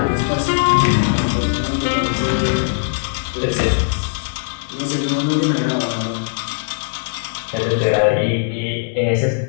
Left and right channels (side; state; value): right; silent; digital silence